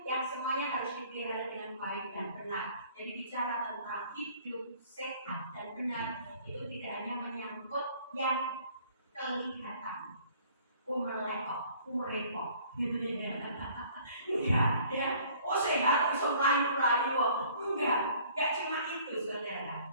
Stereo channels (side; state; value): both; inverted; correlation -0.55